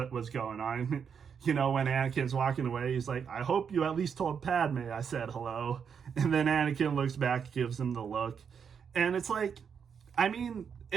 was going on. You know, when Anakin's walking away, he's like, I hope you at least told Padme I said hello. And then Anakin looks back, gives him the look. And it's like, I mean,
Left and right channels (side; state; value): left; quieter; 7.0 dB